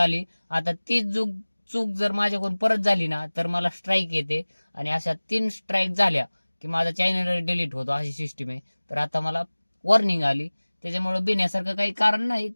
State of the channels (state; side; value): inverted; both; correlation -1.00